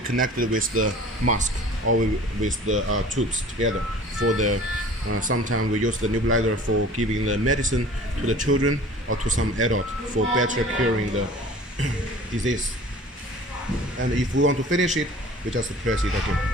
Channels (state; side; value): normal; both; correlation 0.45